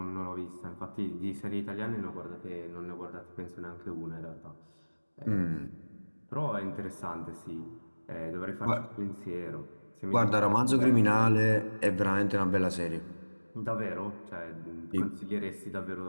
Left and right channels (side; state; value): both; inverted; correlation -1.00